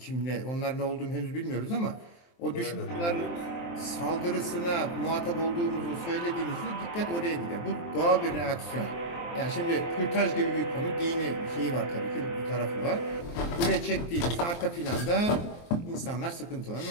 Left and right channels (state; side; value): late; right; 23 ms